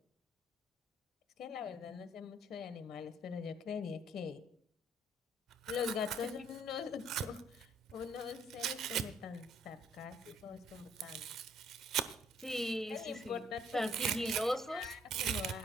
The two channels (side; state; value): both; normal; correlation 0.64